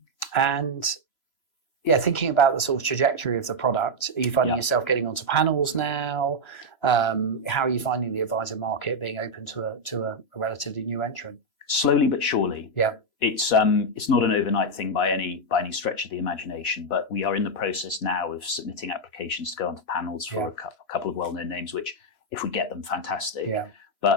And yeah, thinking about the sort of trajectory of the product, are you finding yourself getting onto panels now? How are you finding the advisor market being open to a relatively new entrant? Slowly but surely. Yeah. It's not an overnight thing by any stretch of the imagination, but we are in the process now of submitting applications to go onto panels for a couple of well-known names, which if we get them, fantastic. Yeah.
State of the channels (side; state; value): right; late; 3.0 ms